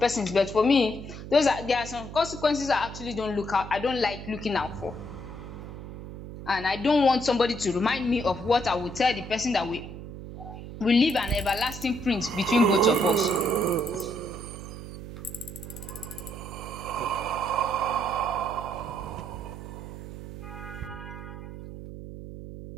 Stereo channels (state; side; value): noise; right; hum, 11 dB below the sound